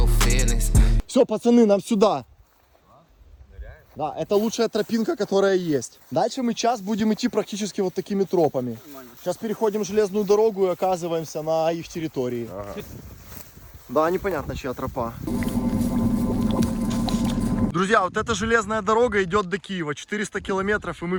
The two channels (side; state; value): both; identical; correlation 1.00